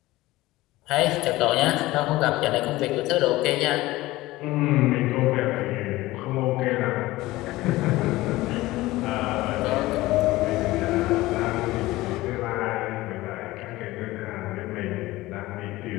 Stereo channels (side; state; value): right; quieter; 18.5 dB